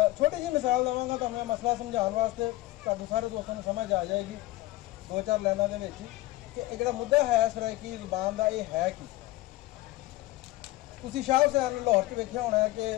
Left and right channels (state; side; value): quieter; right; 18.0 dB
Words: छोटी जी मिसाल देवांगा तो मैं मसला समझाने वास्ते तुहाडे सारे दोस्तों को समझ आ जाएगी दो चार लाइनों के कि जो मुद्दा है सराइकी ज़बान का ये है कि तुसीं शाह हुसैन लाहौर च वेख्या होना है